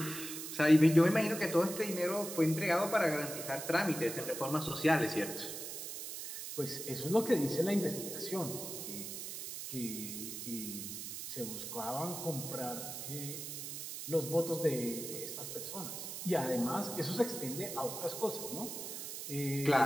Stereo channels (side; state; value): right; noise; hiss, 7 dB below the sound